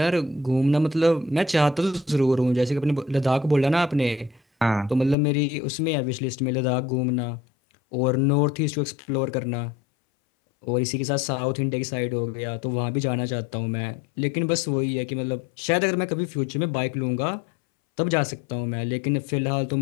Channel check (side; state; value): right; drops out; at 5.2 s